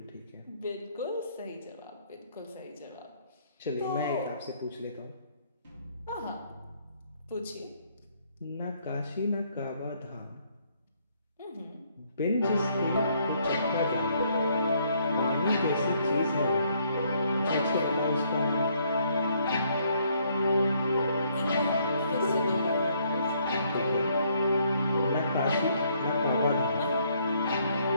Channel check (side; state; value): both; inverted; correlation -0.68